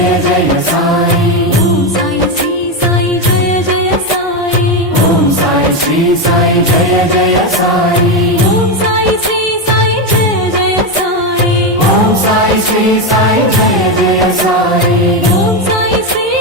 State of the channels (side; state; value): both; normal; correlation 0.10